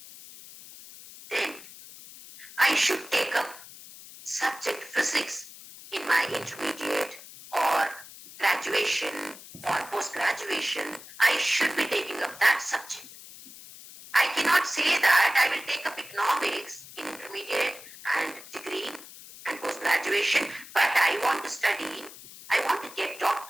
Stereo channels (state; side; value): noise; left; hiss, 17 dB below the sound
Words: then I should take up subject physics in my intermediate or graduation or post-graduation. I should be taking up that subject. I cannot say that I will take up economics in intermediate and degree and post-graduation, but I want to study, I want to get